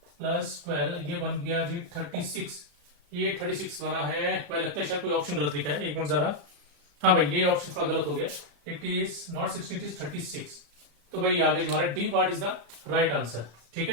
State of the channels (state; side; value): late; left; 35 ms